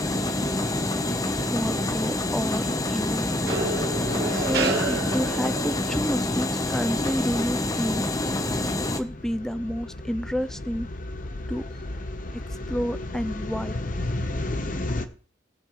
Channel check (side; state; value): both; normal; correlation 0.71